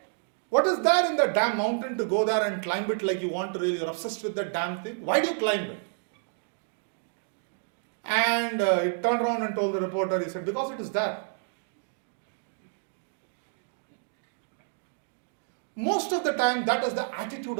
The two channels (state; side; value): silent; left; digital silence